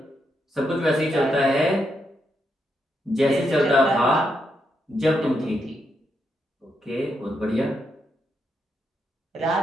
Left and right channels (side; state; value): both; normal; correlation 0.81